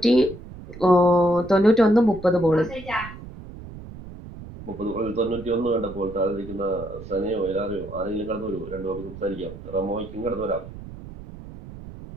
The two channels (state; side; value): noise; right; rumble, 14 dB below the sound